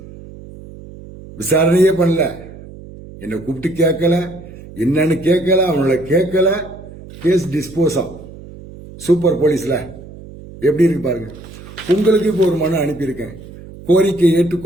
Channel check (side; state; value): right; noise; hum, 17 dB below the sound